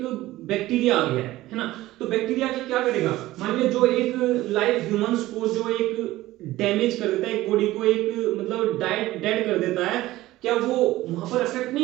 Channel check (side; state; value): left; quieter; 16.7 dB